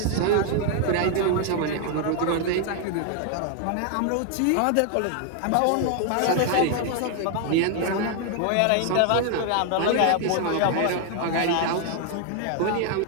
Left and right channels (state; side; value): different; both; correlation 0.00